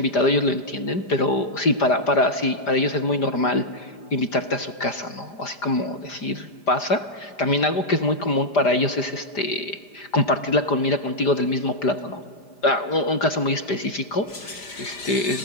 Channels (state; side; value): late; right; 5.0 ms